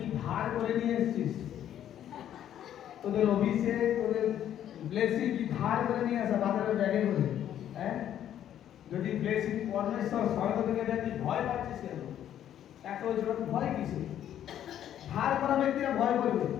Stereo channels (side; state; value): right; quieter; 10.7 dB